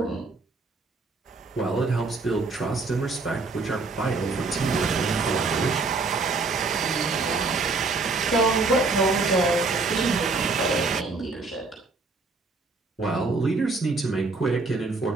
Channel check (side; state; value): left; quieter; 3.9 dB